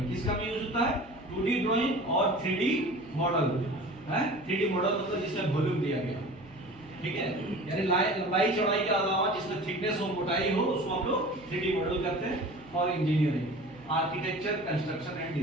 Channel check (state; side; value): noise; right; hum, 24 dB below the sound